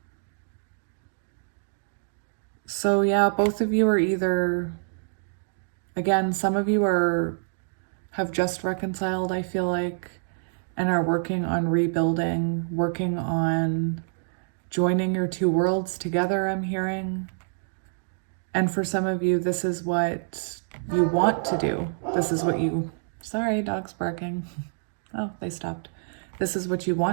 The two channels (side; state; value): left; silent; digital silence